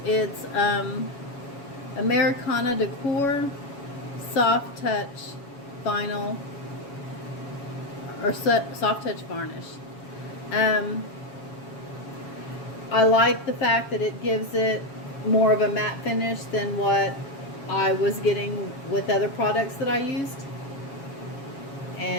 Americana Decor Soft Touch Vinyl or Soft Touch Varnish. I like the fact that it gives it more of a matte finish than what I was getting with other products that I used.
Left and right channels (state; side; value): late; right; 7.3 ms